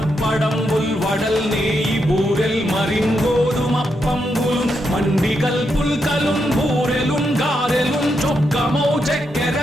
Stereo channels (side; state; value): both; normal; correlation 0.82